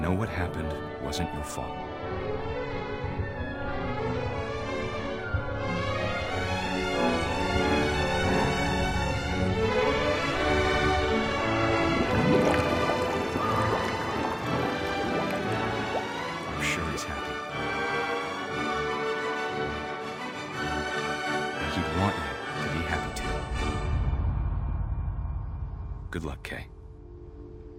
what happened wasn't your fault. I'm sure he's happy. And he'd want you to be happy too. Good luck, Kay.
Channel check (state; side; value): identical; both; correlation 1.00